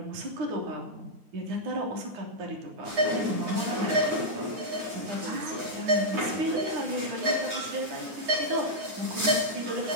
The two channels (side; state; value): left; late; 9.5 ms